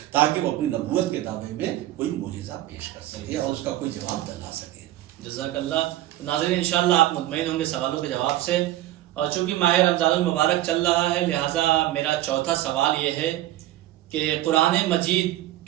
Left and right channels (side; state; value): left; quieter; 14.8 dB